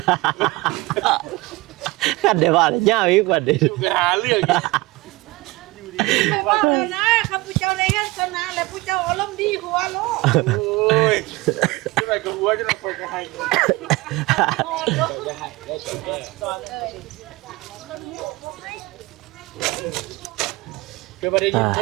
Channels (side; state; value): left; quieter; 21.6 dB